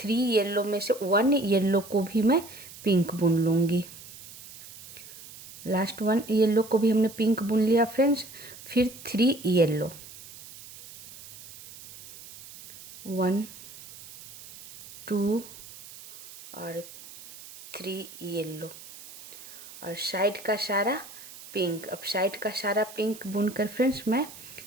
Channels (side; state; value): right; noise; hiss, 17 dB below the sound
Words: येलो में से 1 येलो को भी मैं पिंक बुन लूँगी। लास्ट 1 येलो को भी हमने पिंक बुन लिया फ्रेंड्स। फिर 3 येलो, 1 2 और 3 येलो, और साइड का सारा पिंक। अब साइड का सारा पिंक बुनकर फ्रेंड्स मैं